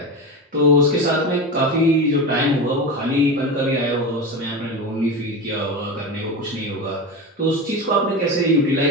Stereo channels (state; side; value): normal; both; correlation 0.22